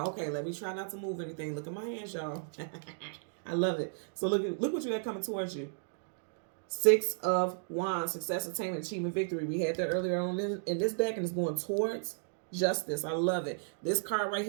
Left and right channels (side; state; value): left; silent; digital silence